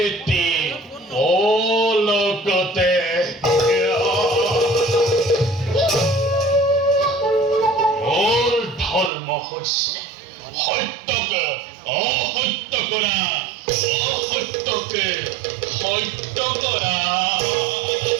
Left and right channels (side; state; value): left; drops out; at 9.1 s